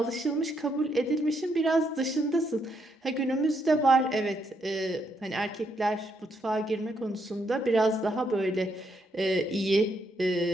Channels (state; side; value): normal; both; correlation 0.76